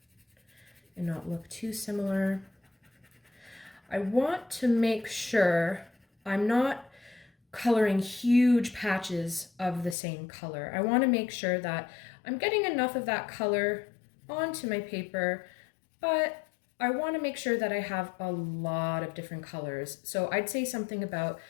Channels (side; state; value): right; drops out; at 10.0 s